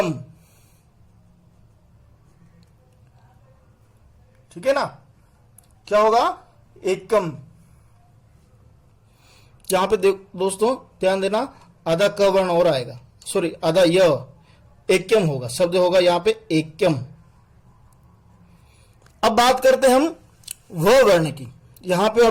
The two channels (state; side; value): identical; both; correlation 1.00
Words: ठीक है ना, क्या होगा एकम। यहां पे दोस्तों ध्यान देना आधा क वर्ण और आएगा, सॉरी आधा य, एकम होगा, शब्द होगा यहां पे एकम। अब बात करते हम व वर्ण की, यहां पे